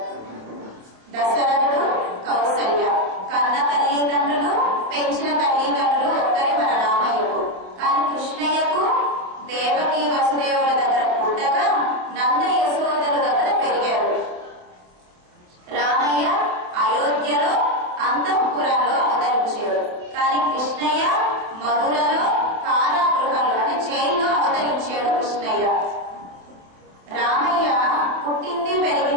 దశరథుడు, కౌసల్య కన్న తల్లిదండ్రులు, పెంచిన తల్లిదండ్రులు ఒక్కరే మన రామయ్యకు. కానీ కృష్ణయ్యకు దేవకి వసుదేవుల దగ్గర పుట్టగా నంద యశోదల దగ్గర పెరిగారు. రామయ్య అయోధ్యలో అంతఃపురంలో అవతరించాడు. కానీ కృష్ణయ్య మధురలో కారాగృహంలో అంటే జైల్లో అవతరించాడు కృష్ణయ్య. రామయ్య పుట్టింది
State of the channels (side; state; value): left; late; 27 ms